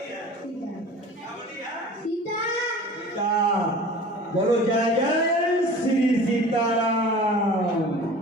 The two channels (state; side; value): normal; both; correlation 0.41